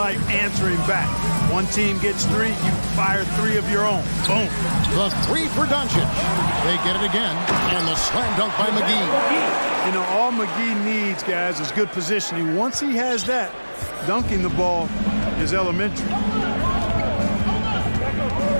answering back. One team gets 3, you fire 3 of your own. Boom. The 3 for Doncic. They get it again. And the slam dunk by McGee. You know, all McGee needs, guys, is good positioning. Once he has that, dunking the ball is elementary.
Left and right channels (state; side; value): inverted; both; correlation -1.00